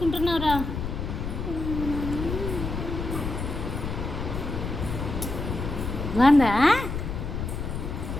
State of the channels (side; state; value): left; noise; rumble, 4 dB below the sound